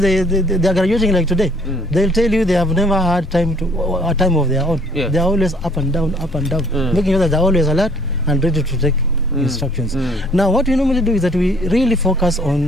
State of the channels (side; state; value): both; normal; correlation 0.59